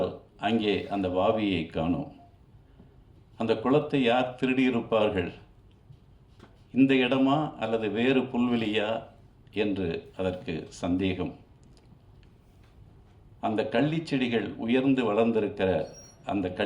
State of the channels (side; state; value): both; identical; correlation 1.00